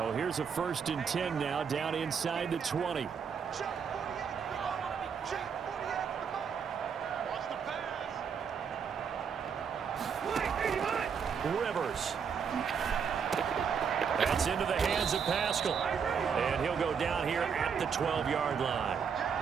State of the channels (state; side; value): quieter; left; 6.7 dB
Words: here's a 1st and 10 now down inside the 20. Rivers. That's into the hands of Pascal. And he'll go down here at the 12-yard line.